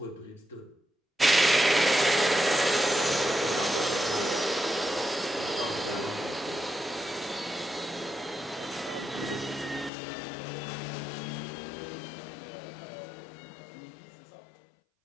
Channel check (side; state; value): right; drops out; at 9.9 s